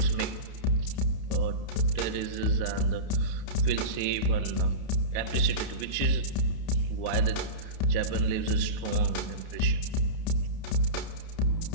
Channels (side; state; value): right; late; 30 ms